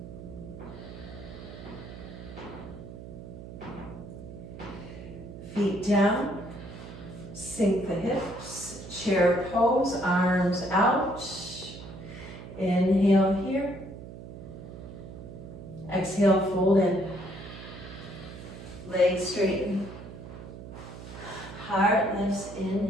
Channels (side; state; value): right; noise; hum, 13 dB below the sound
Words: Feet down, sink the hips, chair pose, arms out. Inhale here. Exhale, fold in. Legs straighten. Heart lifts,